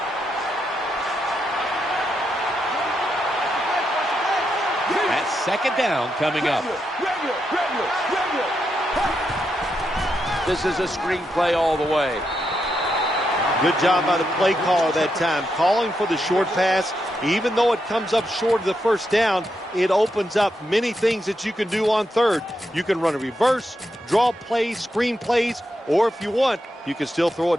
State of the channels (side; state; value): both; normal; correlation 0.83